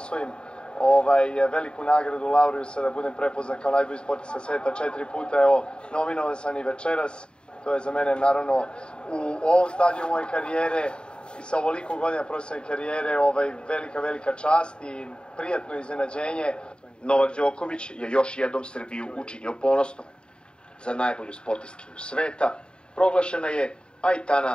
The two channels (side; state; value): right; late; 0.051 ms